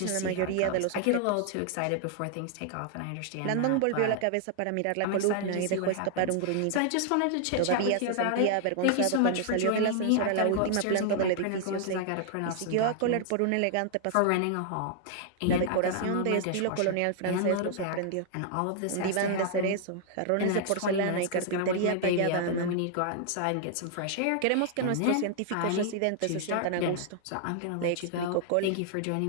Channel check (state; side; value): different; both; correlation 0.00